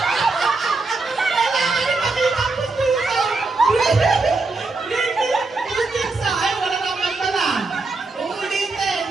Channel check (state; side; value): quieter; left; 3.6 dB